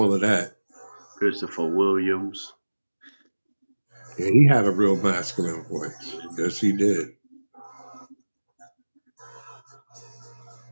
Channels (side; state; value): both; inverted; correlation -1.00